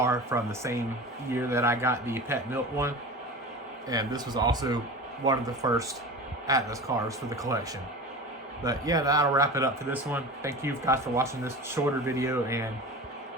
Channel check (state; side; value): normal; both; correlation 0.32